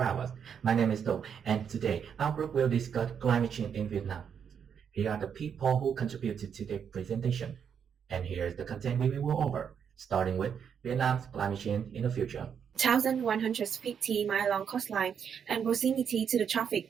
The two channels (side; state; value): left; quieter; 7.5 dB